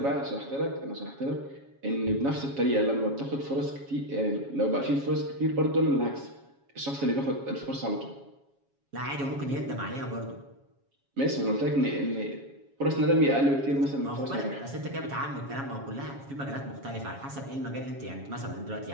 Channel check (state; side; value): late; left; 7.3 ms